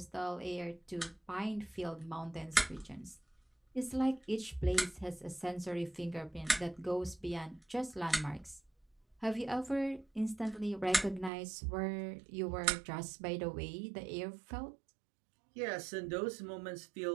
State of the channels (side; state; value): left; drops out; at 11.3 s